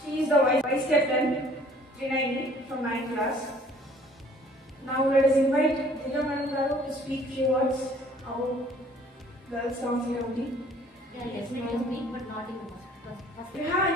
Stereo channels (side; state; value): both; normal; correlation 0.56